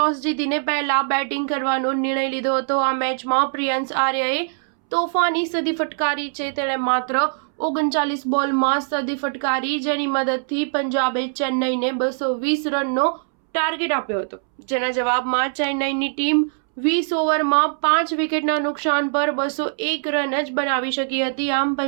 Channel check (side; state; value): left; silent; 64 dB below the other